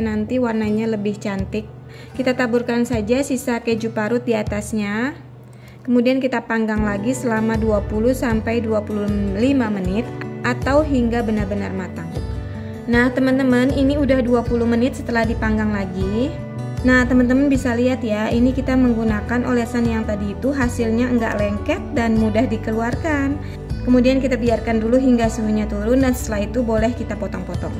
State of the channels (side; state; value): both; identical; correlation 1.00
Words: warnanya lebih cantik. Kita taburkan saja sisa keju parut di atasnya. Kemudian kita panggang lagi selama 20-25 menit atau hingga benar-benar matang. Nah teman-teman, ini udah 20 menit setelah dipanggang lagi. Nah teman-teman bisa lihat ya, ini kita menggunakan olesan yang tadi itu hasilnya enggak lengket dan mudah dikeluarkan. Kemudian kita biarkan dulu hingga suhunya turun dan setelah itu boleh kita potong-potong.